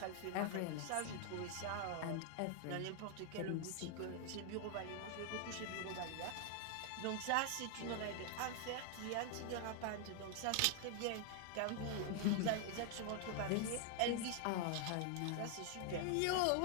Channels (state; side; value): different; both; correlation 0.00